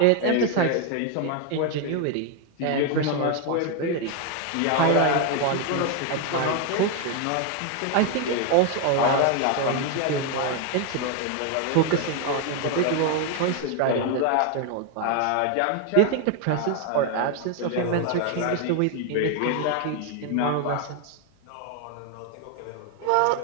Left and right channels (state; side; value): different; both; correlation 0.01